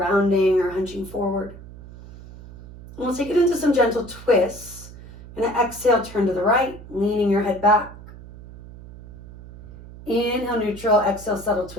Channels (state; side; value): noise; right; hum, 17 dB below the sound